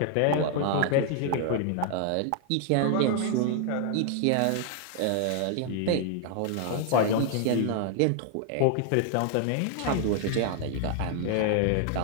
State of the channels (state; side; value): different; both; correlation 0.00